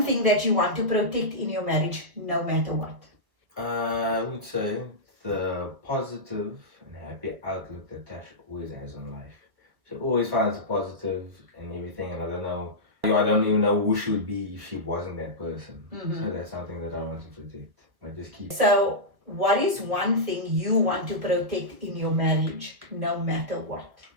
thing that you want to protect in your marriage no matter what? I would say the positive and happy outlook that Tash always has on life. She always finds the positive in everything, and I don't even know who she would be if she wasn't that person. Mhm. So that's something that I want to protect. I just keep. So, what is one thing you want to protect in your marriage no matter what?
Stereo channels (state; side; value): late; left; 1.5 ms